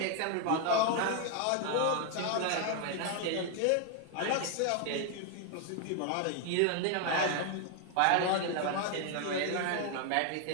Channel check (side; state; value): both; different; correlation 0.01